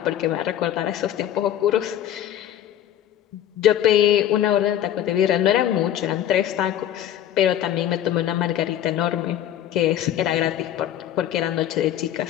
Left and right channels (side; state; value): right; quieter; 11.3 dB